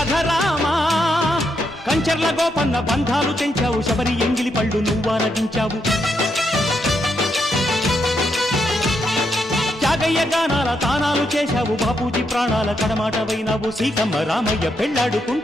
రామా కంచర్ల గోపన్న బంధాలు తెంచావు శబరి ఎంగిలి పళ్ళు నువ్వారగించావు త్యాగయ్య గానాల తానాలు చేశావు బాపూజీ ప్రాణాల కడమాటవైనావు సీతమ్మ రామయ్య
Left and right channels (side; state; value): both; normal; correlation 0.80